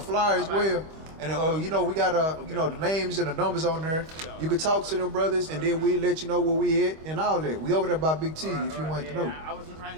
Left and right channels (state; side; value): late; left; 25 ms